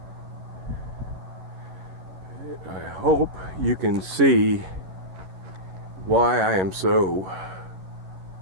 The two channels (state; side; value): late; left; 11 ms